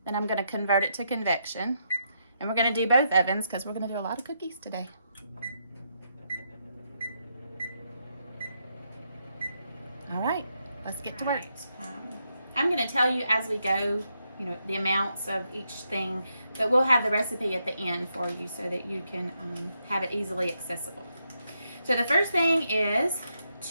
Then I'm going to convert it to convection. And we're going to do both ovens because we're going to do a lot of cookies today. All right, let's get to work. I'm going to tell you as we go, the amounts of each thing, but we'll have the recipe at the end for you so that you can have it easily accessible. So the first thing is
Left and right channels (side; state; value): both; inverted; correlation -0.80